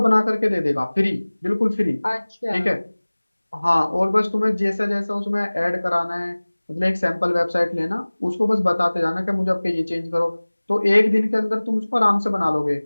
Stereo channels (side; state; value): both; inverted; correlation -1.00